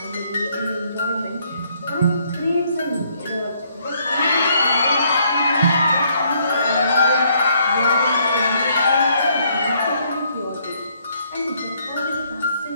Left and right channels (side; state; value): both; inverted; correlation -0.68